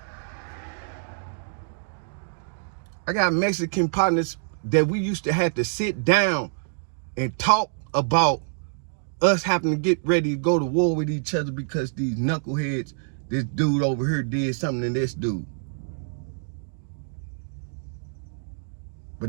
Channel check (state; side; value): silent; left; digital silence